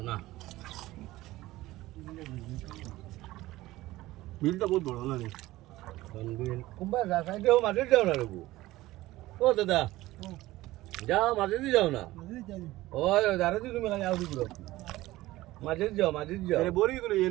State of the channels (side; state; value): left; quieter; 17.4 dB